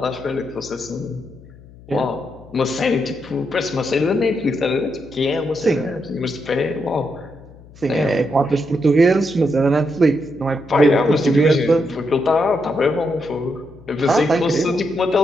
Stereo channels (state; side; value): noise; left; hum, 22 dB below the sound